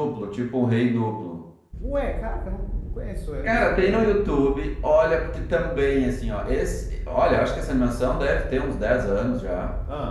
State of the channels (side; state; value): both; identical; correlation 1.00